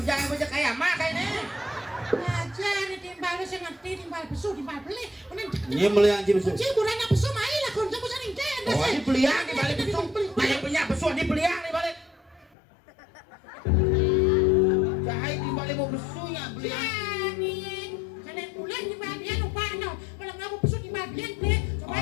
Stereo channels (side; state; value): right; drops out; at 12.5 s